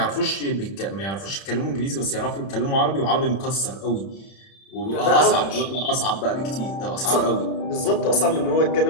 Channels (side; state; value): right; late; 31 ms